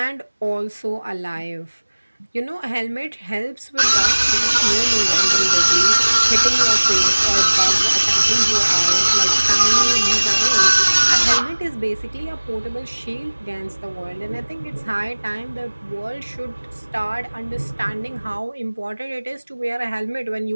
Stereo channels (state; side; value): inverted; both; correlation -1.00